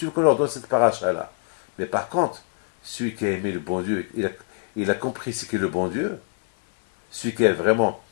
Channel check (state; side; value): quieter; right; 39.1 dB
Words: veux qu'on leur donne cette paracha-là? Mais par contre, celui qui a aimé le bon Dieu, il a compris ce qu'est le bon Dieu. Celui qui est vraiment,